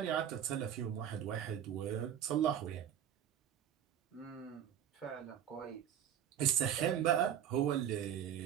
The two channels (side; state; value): left; quieter; 9.8 dB